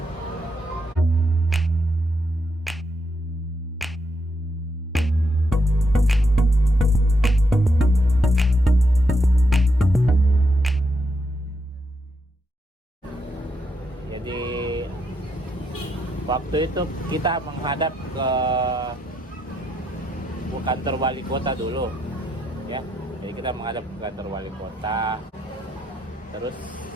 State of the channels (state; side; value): normal; both; correlation 0.79